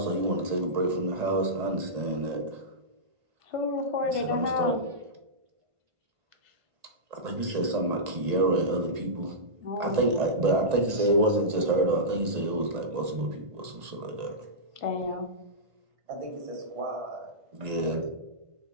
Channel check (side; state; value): left; late; 1.9 ms